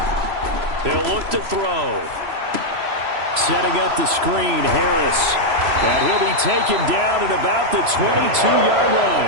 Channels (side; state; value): left; late; 3.0 ms